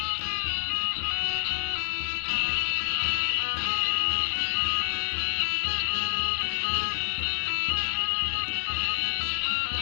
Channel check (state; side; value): silent; right; digital silence